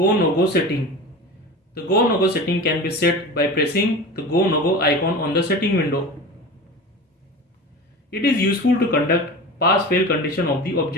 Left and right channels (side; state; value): both; normal; correlation 0.32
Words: no go setting. The go no go setting can be set by pressing the go no go icon on the setting window. It is useful to conduct pass fail condition of the